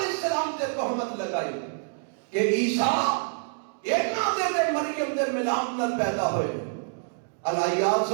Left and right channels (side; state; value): left; silent; digital silence